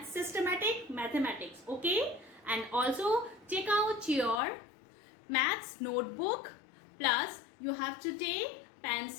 Systematic Mathematics, okay? And also take out your maths notebook, plus you have to take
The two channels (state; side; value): drops out; right; at 4.4 s